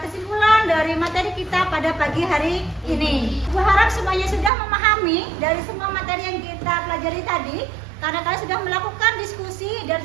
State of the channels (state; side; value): drops out; left; at 4.5 s